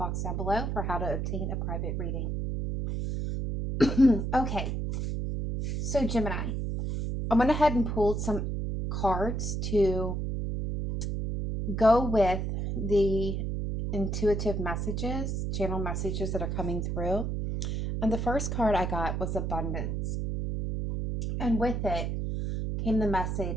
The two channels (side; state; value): right; noise; hum, 1 dB below the sound